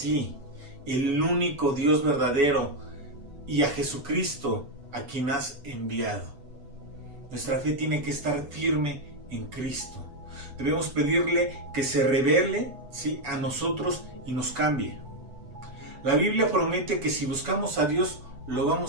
el único Dios verdadero, y a Jesucristo, a quien has enviado. Nuestra fe tiene que estar firme en Cristo. Debemos pedirle que se revele, ¿sí?, a nosotros y nos cambie. La Biblia promete que si buscamos a Dios, lo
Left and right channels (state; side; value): late; left; 8.1 ms